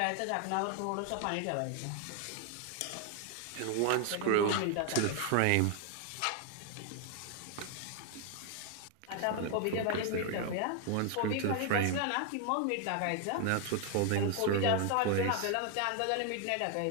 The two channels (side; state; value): both; different; correlation 0.00